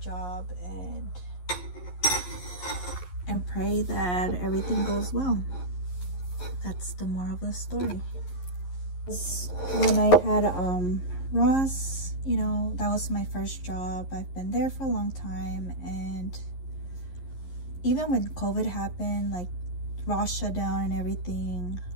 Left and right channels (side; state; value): right; late; 11 ms